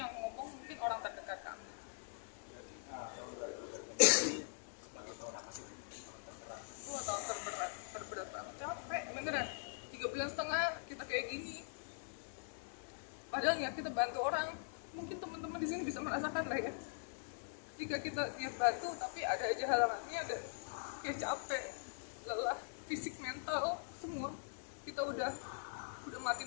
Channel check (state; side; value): silent; right; digital silence